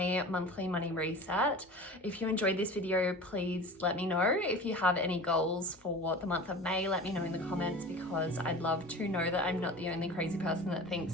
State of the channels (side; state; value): both; normal; correlation 0.37